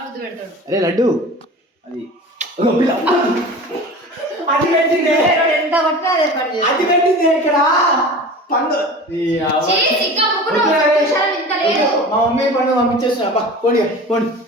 ముద్దు పెడతాడు. అరే లడ్డు అది ఎంత పట్టినా అదే పని చేస్తాడు. అది పెట్టింది ఇక్కడ పండు. మా మమ్మీ పండు పంపించేస్తున్నా. పోనీ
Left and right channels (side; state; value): both; normal; correlation 0.37